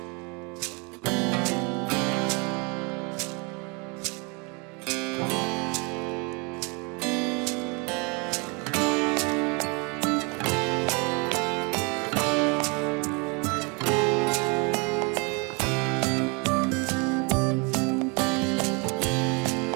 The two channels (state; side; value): quieter; left; 30.8 dB